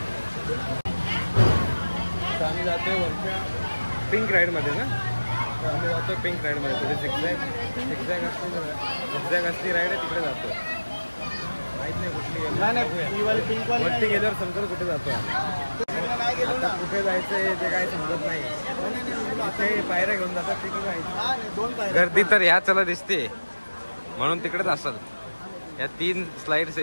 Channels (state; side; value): inverted; both; correlation -1.00